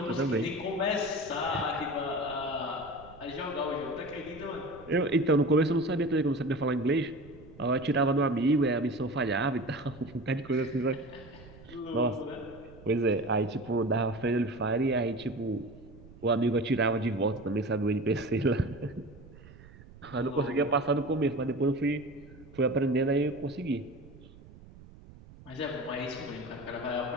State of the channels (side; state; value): right; noise; rumble, 20 dB below the sound